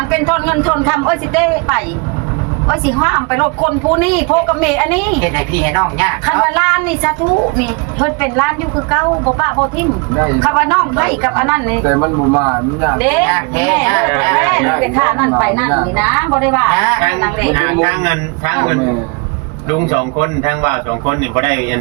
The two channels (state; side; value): quieter; left; 31.5 dB